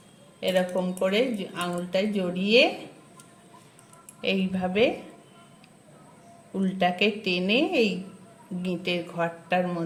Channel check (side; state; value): both; identical; correlation 1.00